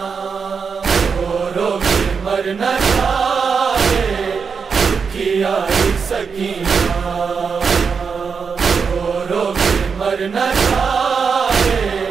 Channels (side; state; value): left; quieter; 5.8 dB